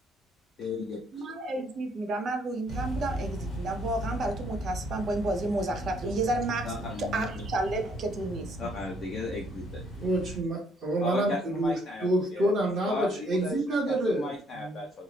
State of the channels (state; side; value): normal; both; correlation 0.67